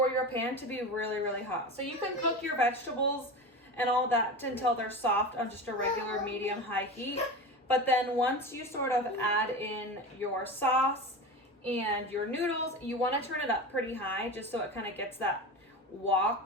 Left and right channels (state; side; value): normal; both; correlation 0.27